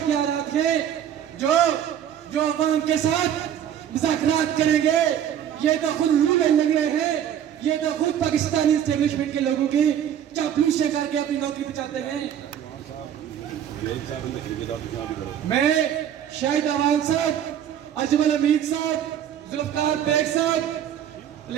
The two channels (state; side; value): quieter; left; 9.8 dB